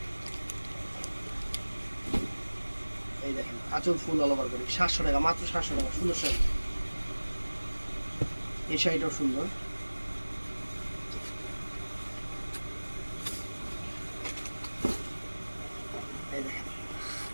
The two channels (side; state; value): both; inverted; correlation -1.00